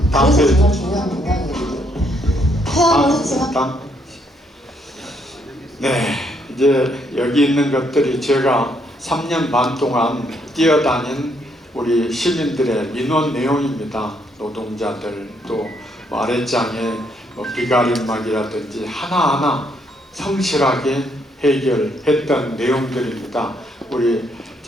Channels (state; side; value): normal; both; correlation 0.72